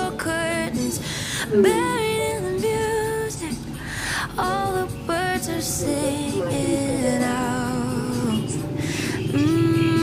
curtains, buried in the music. All the birds are singing out.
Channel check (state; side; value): identical; both; correlation 1.00